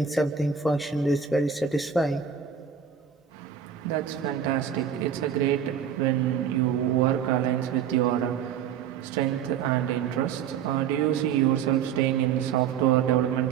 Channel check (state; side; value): quieter; left; 7.9 dB